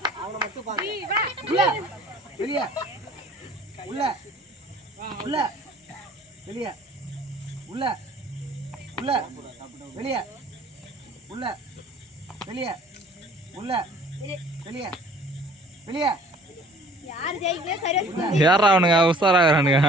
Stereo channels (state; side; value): normal; both; correlation 0.52